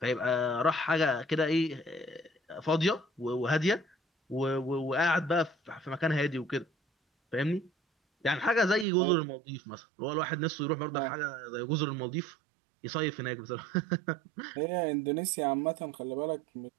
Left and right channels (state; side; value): drops out; left; at 8.8 s